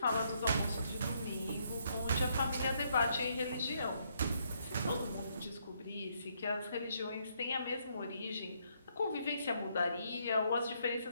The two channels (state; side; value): inverted; both; correlation -0.73